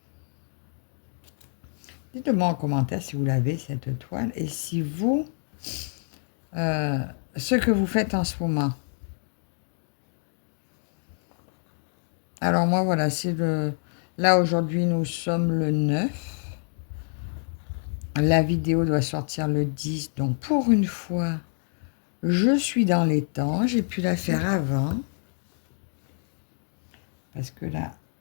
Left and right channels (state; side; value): silent; right; 60 dB below the other